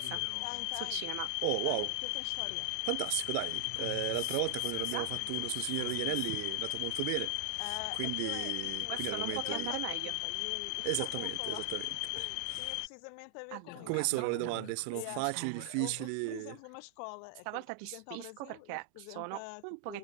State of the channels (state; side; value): different; both; correlation 0.00